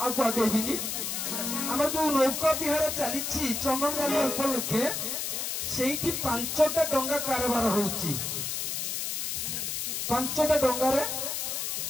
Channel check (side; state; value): left; noise; hiss, 2 dB below the sound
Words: आगे आम जो नौका विहार चली चंदन गाड़ी उपलक्षे से 5टा डंगा कारबार होउची 5टा डंगार